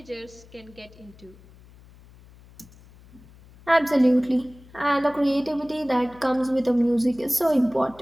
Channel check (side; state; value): left; noise; hum, 24 dB below the sound